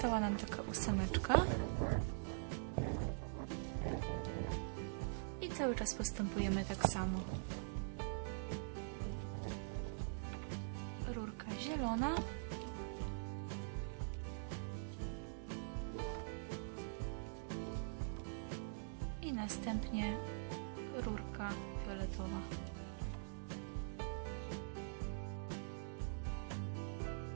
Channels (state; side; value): silent; left; digital silence